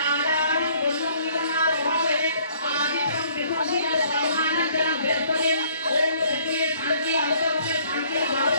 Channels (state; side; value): inverted; both; correlation -0.60